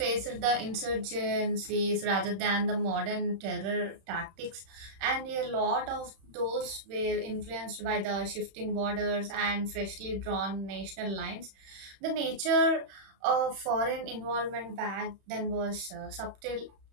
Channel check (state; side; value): late; left; 31 ms